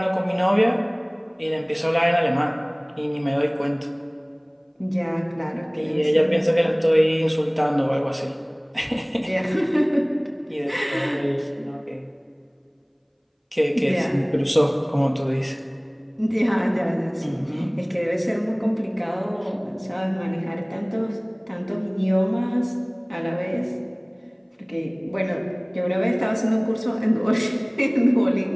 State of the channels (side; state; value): both; identical; correlation 1.00